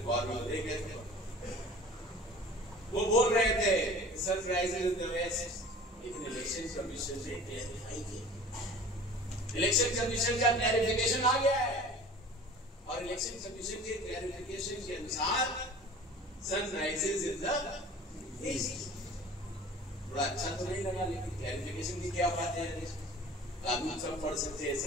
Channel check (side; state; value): both; normal; correlation 0.43